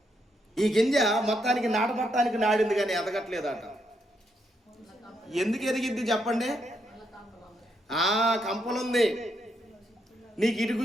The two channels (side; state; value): both; normal; correlation 0.78